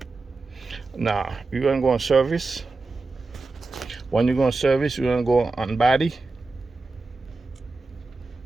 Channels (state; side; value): quieter; left; 3.6 dB